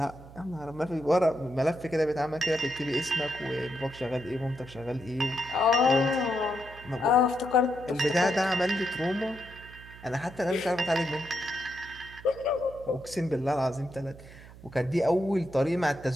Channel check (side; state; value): right; noise; hum, 18 dB below the sound